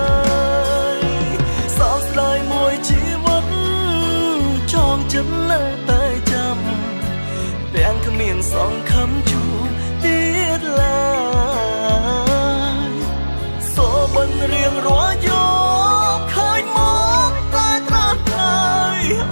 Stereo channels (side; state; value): both; inverted; correlation -1.00